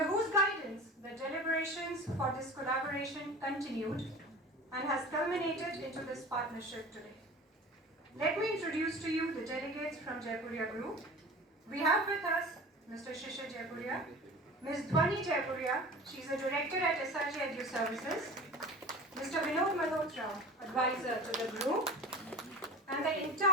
whose guidance the deliberations for this collaboration continued and has culminated into this partnership today. Let me introduce to you the delegates from Jaipuria Group. We have with us Mr. Shishir Jaipuria, Ms. Dhwani Jaipuria, she is a director at SRJ Edu Services, Mr. Vinod Malhotra, advisor to the group, and the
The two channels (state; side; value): normal; both; correlation 0.35